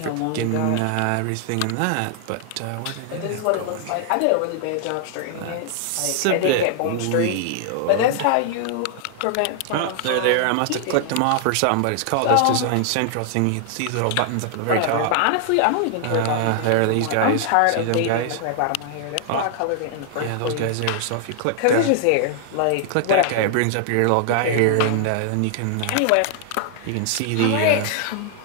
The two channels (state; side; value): different; both; correlation 0.00